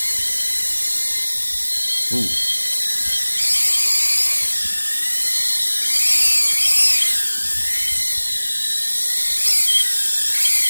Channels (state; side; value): inverted; both; correlation -1.00